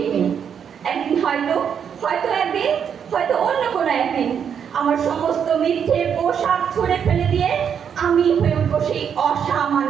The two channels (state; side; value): quieter; left; 7.8 dB